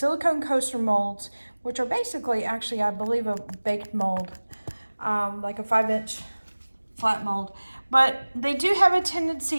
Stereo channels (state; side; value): inverted; both; correlation -1.00